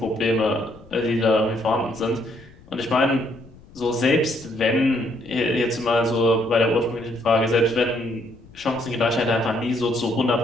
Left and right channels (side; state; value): left; noise; rumble, 23 dB below the sound